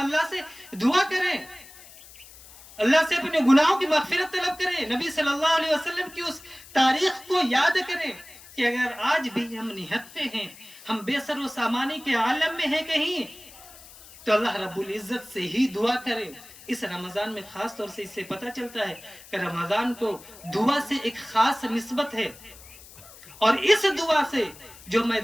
سے دعا کریں، اللہ سے اپنے گناہوں کی مغفرت طلب کریں، نبی صلی اللہ علیہ وسلم کی اس تاریخ کو یاد کریں کہ اگر آج بھی ہم نہتے ہیں، ہم بے سر و سامانی کے عالم میں ہیں کہیں، تو اللہ رب العزت سے ہی دعا کریں۔ اس رمضان میں خاص طور سے اس سے پتہ چلتا ہے کہ رمضان کو دعا سے ایک خاص نسبت ہے، اور اس دعا سے جو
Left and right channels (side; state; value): left; noise; hiss, 20 dB below the sound